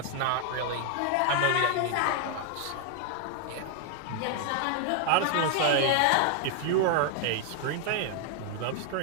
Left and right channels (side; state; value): both; different; correlation 0.00